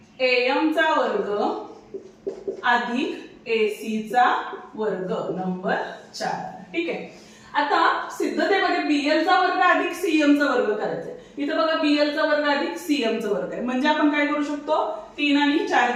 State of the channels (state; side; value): identical; both; correlation 1.00